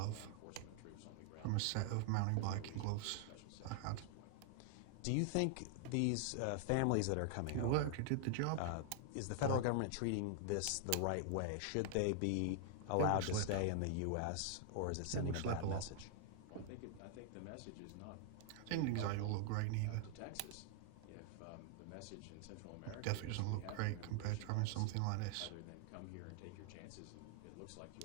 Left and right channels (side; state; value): both; different; correlation 0.00